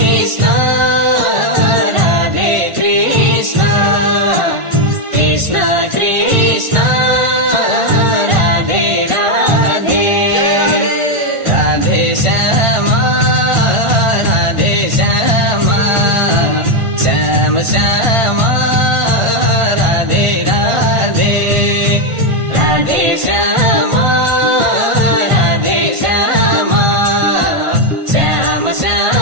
Radhe Krishna Krishna Krishna Radhe Radhe Radhe Shyama Radhe Shyama Shyam Shyama Radhe Radhe Radhe Shyama Radhe Shyama Shyam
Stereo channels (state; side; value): late; left; 1.5 ms